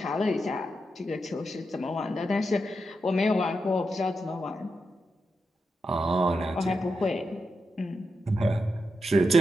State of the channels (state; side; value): normal; both; correlation 0.86